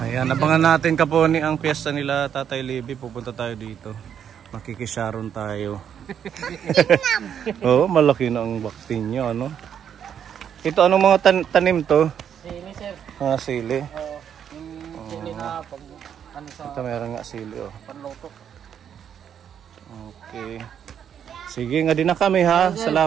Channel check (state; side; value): quieter; left; 8.7 dB